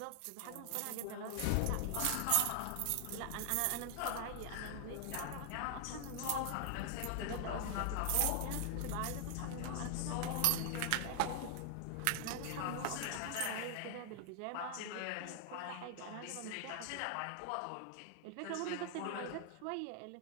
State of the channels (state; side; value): different; both; correlation 0.00